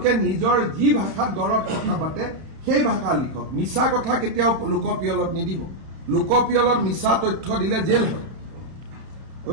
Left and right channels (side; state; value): left; late; 31 ms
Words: নিজৰ যি ভাষাত ঘৰত কথা পাতে সেই ভাষা লিখক। মিছা কথা কেতিয়াও লোকপিয়লত নিদিব। লোকপিয়লত মিছা তথ্য দিলে জেল হয়।